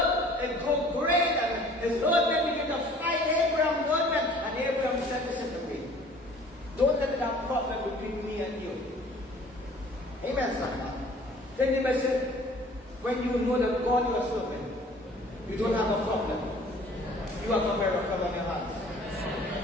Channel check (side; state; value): both; normal; correlation 0.51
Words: it go great, and his herdmen began to fight Abraham's herdmen. And Abraham said, listen to me. Don't let that problem between me and you. Amen, somebody. Then the message, when you know that God you are serving, you don't have a problem. You have a miracle on your